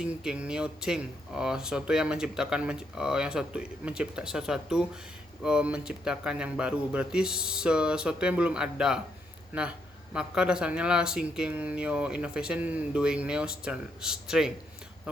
new thing, sesuatu yang menciptakan menciptakan yang baru, berarti sesuatu yang belum ada. Nah, maka dasarnya lah thinking new innovation, doing new strength,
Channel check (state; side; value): normal; both; correlation 0.76